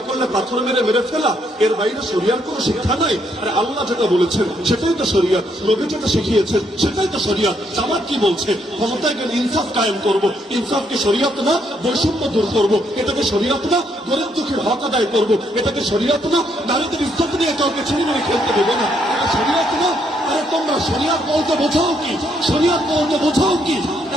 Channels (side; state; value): both; normal; correlation 0.73